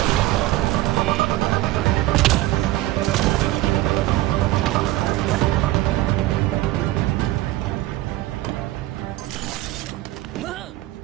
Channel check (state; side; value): quieter; left; 16.8 dB